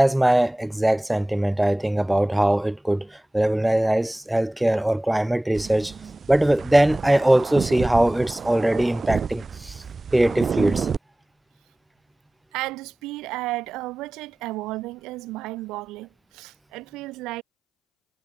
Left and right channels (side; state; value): both; normal; correlation 0.97